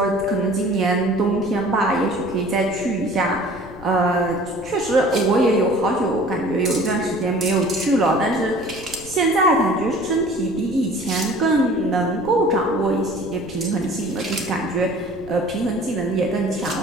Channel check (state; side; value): noise; left; rumble, 19 dB below the sound